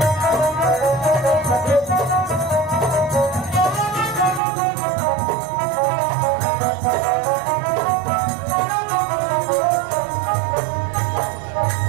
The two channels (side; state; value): left; drops out; at 4.4 s